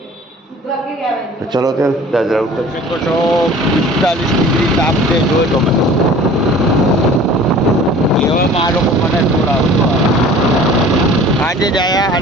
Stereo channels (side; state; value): both; normal; correlation 0.46